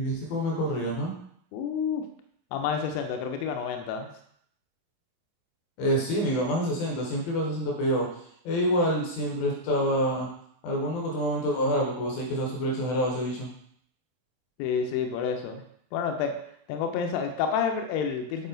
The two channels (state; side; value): late; right; 24 ms